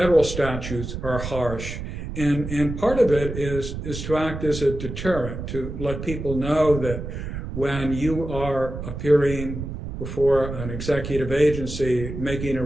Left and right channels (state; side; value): noise; right; rumble, 7 dB below the sound